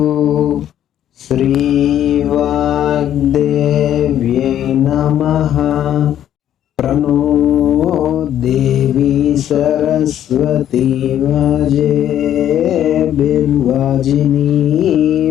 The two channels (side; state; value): right; quieter; 10.9 dB